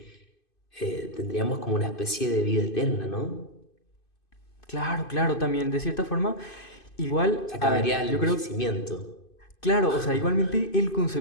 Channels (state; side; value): late; right; 2.5 ms